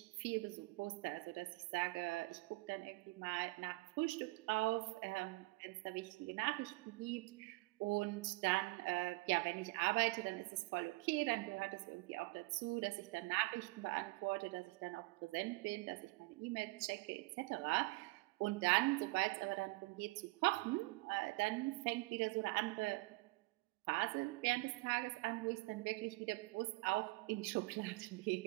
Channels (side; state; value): left; quieter; 23.9 dB